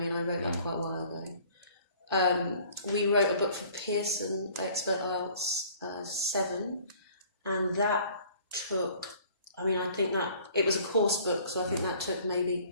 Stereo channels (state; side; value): inverted; both; correlation -0.53